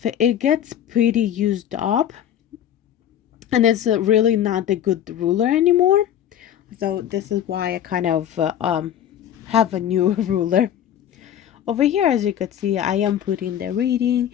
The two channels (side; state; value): right; quieter; 10.3 dB